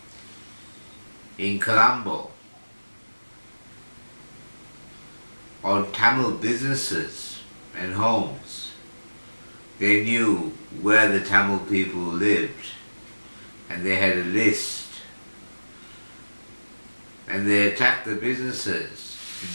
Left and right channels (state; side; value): inverted; both; correlation -1.00